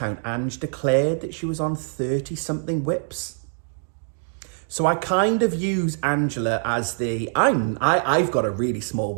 Ange declared that she was on 30-something whips. So I kind of use Angela as I've got a really small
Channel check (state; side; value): silent; left; digital silence